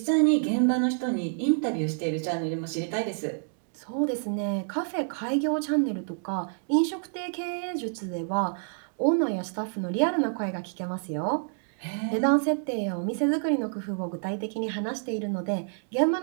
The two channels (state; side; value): silent; left; digital silence